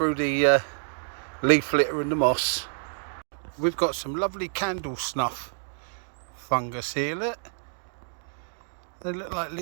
the leaf litter and the moss. We've got some lovely candle snuff fungus here, look. They look like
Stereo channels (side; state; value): left; silent; digital silence